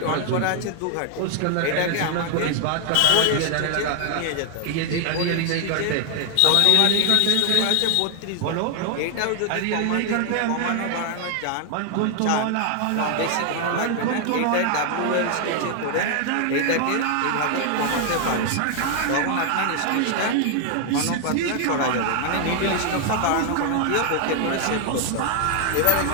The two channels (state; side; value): different; both; correlation 0.00